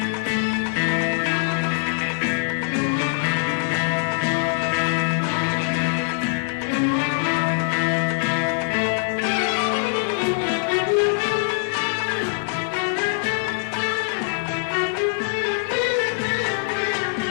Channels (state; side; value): silent; right; digital silence